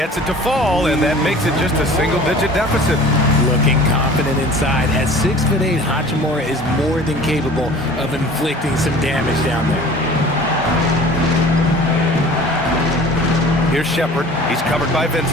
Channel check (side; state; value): both; normal; correlation 0.44